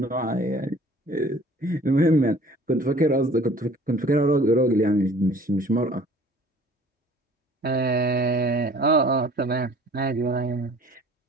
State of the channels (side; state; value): both; normal; correlation 0.51